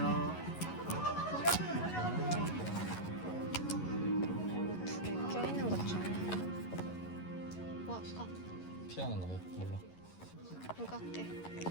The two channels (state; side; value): late; right; 11 ms